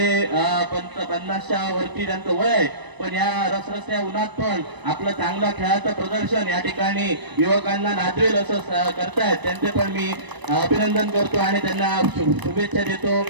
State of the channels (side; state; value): left; late; 1.0 ms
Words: 50च्या वरती त्यांचं वय आहे. पण या रसरस्या उन्हात पण आपलं चांगलं खेळाचं प्रदर्शन या ठिकाणी युवकांना नाचवेल असं करतायत. त्यांचे पण मी अभिनंदन करतो आणि त्यांना शुभेच्छा देतो.